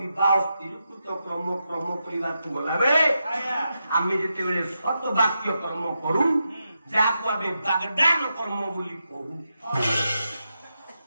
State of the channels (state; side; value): inverted; both; correlation -0.86